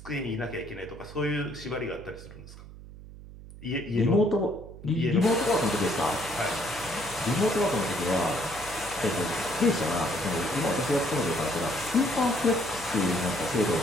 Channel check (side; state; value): right; noise; hum, 16 dB below the sound